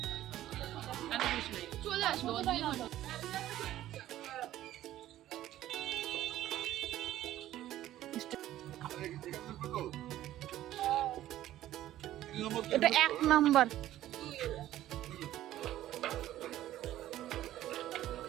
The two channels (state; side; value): quieter; left; 13.6 dB